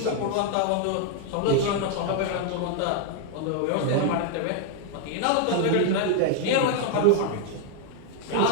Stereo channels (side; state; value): both; different; correlation 0.00